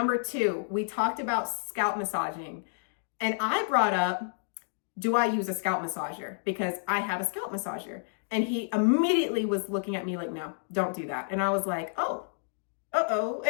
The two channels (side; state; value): right; silent; digital silence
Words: two, we talked about scalp massaging. And I brought up, do I use a scalp massager? Because I have a scalp massager. And he immediately was looking at me like, no, don't do that. And I was like, oh, uh-oh.